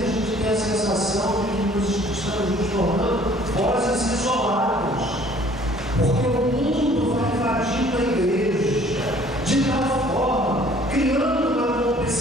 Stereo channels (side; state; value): both; normal; correlation 0.55